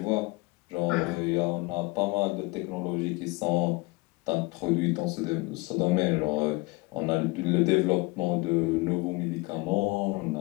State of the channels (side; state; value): right; quieter; 24.8 dB